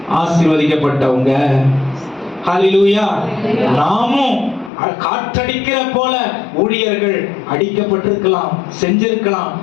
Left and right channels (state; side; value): drops out; right; at 4.7 s